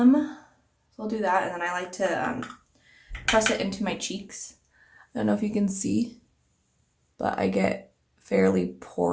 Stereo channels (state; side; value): identical; both; correlation 1.00